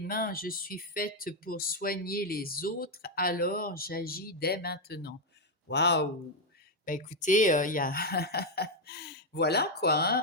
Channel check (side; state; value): both; normal; correlation 0.02